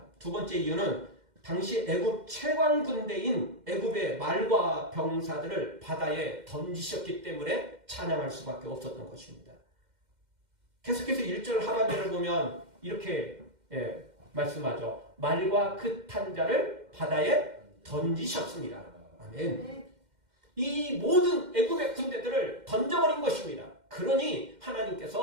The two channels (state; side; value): late; left; 2.1 ms